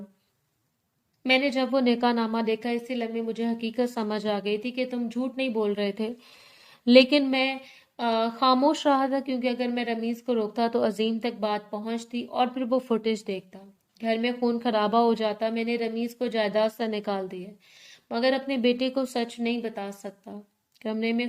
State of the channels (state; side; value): identical; both; correlation 1.00